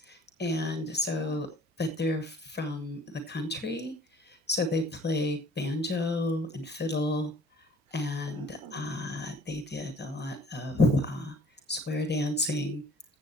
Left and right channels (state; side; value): normal; both; correlation 0.53